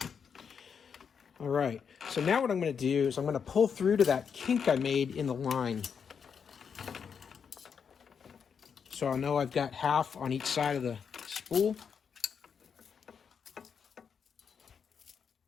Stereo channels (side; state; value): right; quieter; 6.7 dB